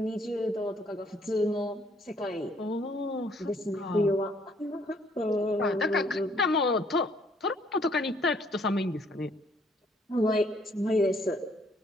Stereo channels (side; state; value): both; normal; correlation 0.65